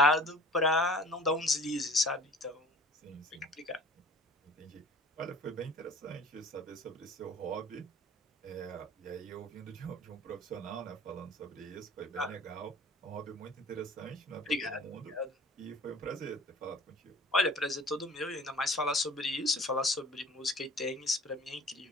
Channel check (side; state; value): both; normal; correlation 0.46